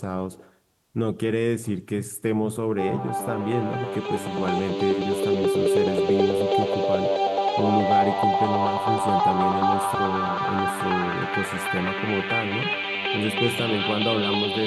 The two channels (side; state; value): both; identical; correlation 1.00